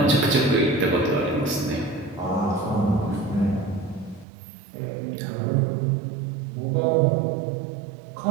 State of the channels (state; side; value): drops out; left; at 4.2 s